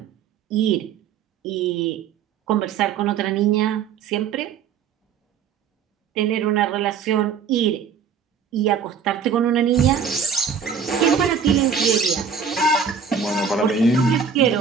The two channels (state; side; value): quieter; left; 6.5 dB